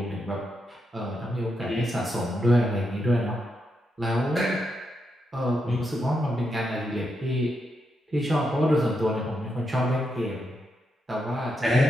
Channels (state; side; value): normal; both; correlation 0.83